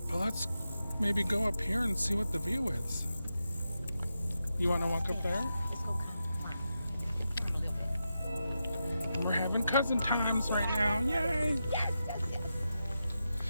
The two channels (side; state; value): both; inverted; correlation -0.88